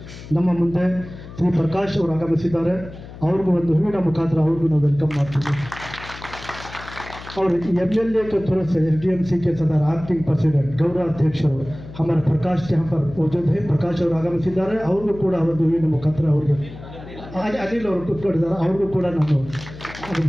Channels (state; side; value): noise; left; hum, 15 dB below the sound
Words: ನಮ್ಮ ಮುಂದೆ ಶ್ರೀ ಪ್ರಕಾಶ್ ಅವರು ಆಗಮಿಸಿದ್ದಾರೆ। ಅವ್ರಿಗೂ ಒಂದು ಹೂವಿನ ಮುಖಾಂತರ ಅವ್ರಿಗೂ ನಾವು ವೆಲ್ಕಮ್ ಮಾಡ್ತೀವಿ। और MLA के तरफ से SDMC के सदर एक्टिंग प्रेसिडेंट गौरवाध्यक्ष हमारे प्रकाश यहाँ पर मौजूद है। प्रकाश ಅವರು ಆಗಮಿಸಿದ್ದಾರೆ, ಅವ್ರಿಗೂ ಕೂಡ ಒಂದು ಹೂವಿನ ಮುಖಾಂತರ ಅವ್ರಿಗೆ ಅನಿಲ್ ಅವರು ಕೂತ್ಕೊಂಡಿದ್ದಾರೆ, ಅವ್ರಿಗೂ ಕೂಡ ನಾನು